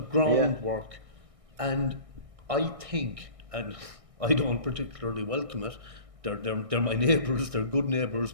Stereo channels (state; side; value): late; left; 1.6 ms